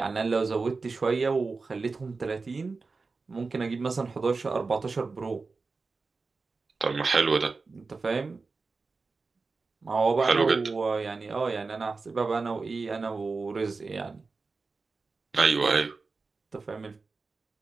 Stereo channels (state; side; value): quieter; left; 4.2 dB